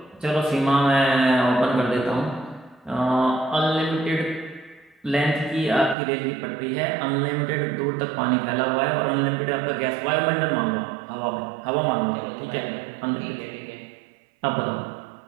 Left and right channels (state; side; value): drops out; left; at 6.0 s